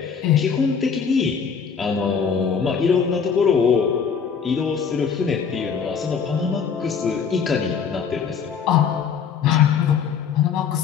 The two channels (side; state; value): right; quieter; 6.6 dB